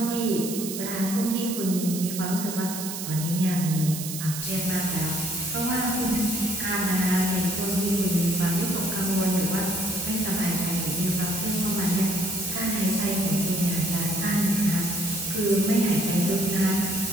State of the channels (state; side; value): noise; right; hiss, 7 dB below the sound